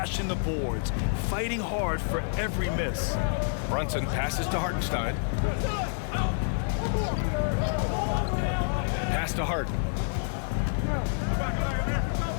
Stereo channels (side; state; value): right; silent; digital silence